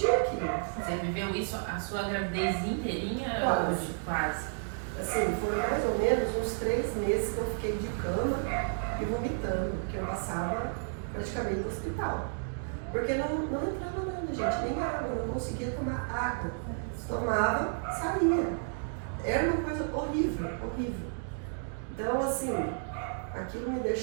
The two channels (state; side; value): silent; left; digital silence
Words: aquilo. Você viveu isso a sua gravidez inteirinha? Quase. Quase. Assim, foram mais ou menos uns 3 meses que eu fiquei de cama e vomitando, porque eu passava praticamente no hospital. Porque não entrava nada, gente, nem água, eu não conseguia tomar água. Tomava, saía. Era uma coisa horrível, horrível. Então, assim, aquilo me